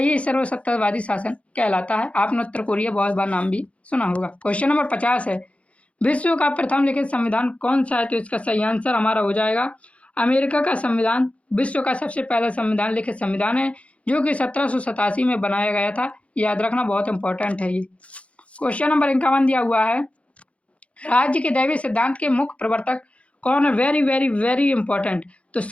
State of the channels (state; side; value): late; right; 0.063 ms